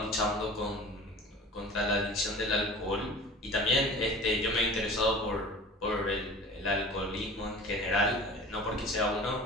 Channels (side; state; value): both; normal; correlation 0.40